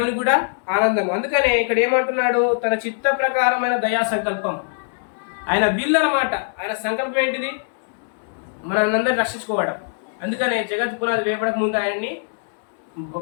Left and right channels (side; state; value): right; silent; digital silence